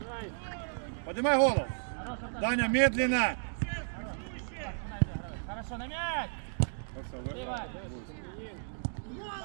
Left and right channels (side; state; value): left; silent; digital silence